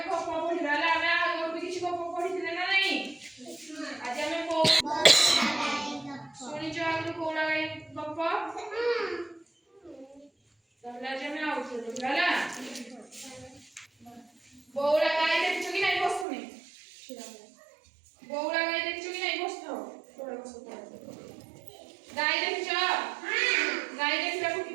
गप पढिबा ला हमें आगो भी किछि गप पढिथिले ना नहीं आज हमें को सुनि जो आगो कोला गाई गप तहले आज हमें आउथो देखला बौला गाई देखछु कि नहीं बसुनी बौला गाई देखछु कि नहीं बसतो तोरे बसतो गाई देखছো गाई देखला को की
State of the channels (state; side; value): drops out; left; at 16.2 s